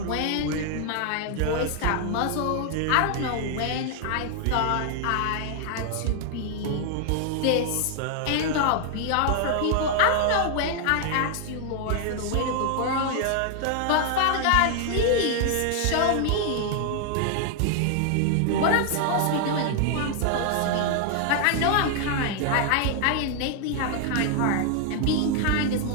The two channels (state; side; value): different; both; correlation 0.00